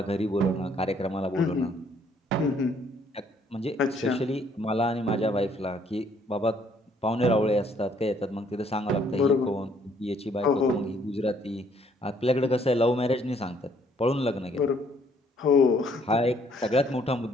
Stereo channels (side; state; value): both; normal; correlation 0.65